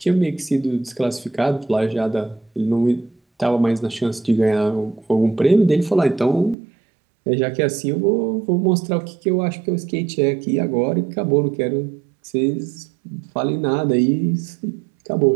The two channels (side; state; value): left; drops out; at 6.6 s